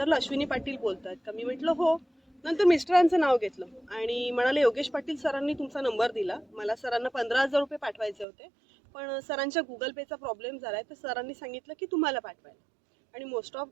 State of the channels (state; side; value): drops out; left; at 8.2 s